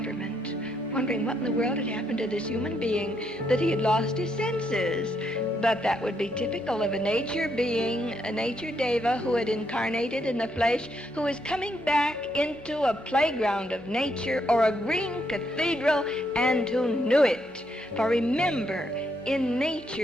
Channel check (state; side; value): noise; right; hum, 29 dB below the sound